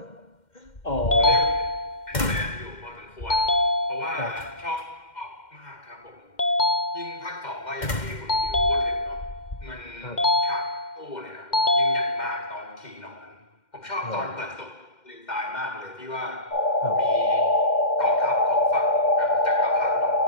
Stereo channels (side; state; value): right; late; 2.1 ms